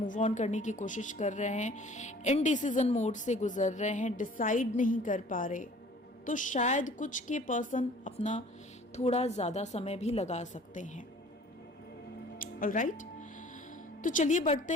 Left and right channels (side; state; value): both; normal; correlation 0.50